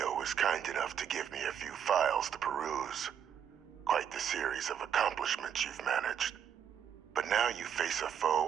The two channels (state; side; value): quieter; left; 8.5 dB